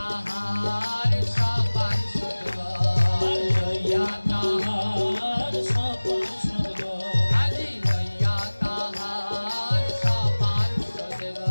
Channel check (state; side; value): inverted; both; correlation -1.00